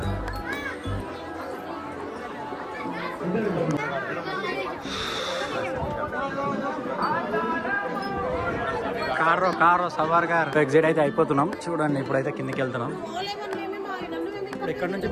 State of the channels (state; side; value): identical; both; correlation 1.00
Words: కారు సవార్ గారు ఎగ్జిట్ అయితే అయిపోతున్నాం. చూడండి ఇప్పుడైతే కిందకి వెళ్తున్నాం. ఇప్పుడు ఇక్కడ నుంచి